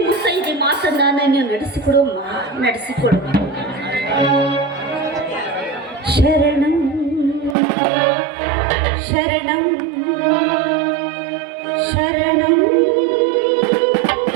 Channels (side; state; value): left; drops out; at 7.6 s